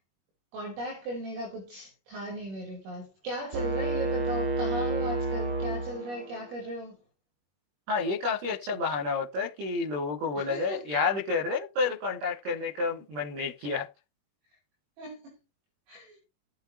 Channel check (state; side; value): late; left; 21 ms